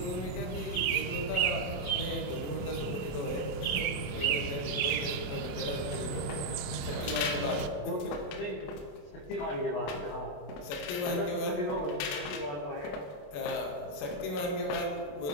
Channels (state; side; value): late; right; 28 ms